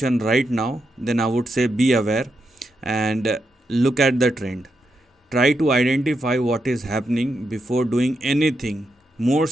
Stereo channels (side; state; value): both; normal; correlation 0.84